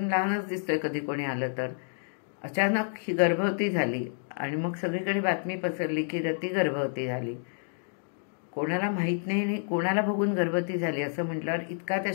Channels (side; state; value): right; silent; digital silence